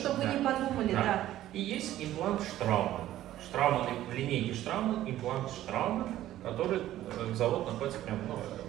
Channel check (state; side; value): quieter; left; 13.6 dB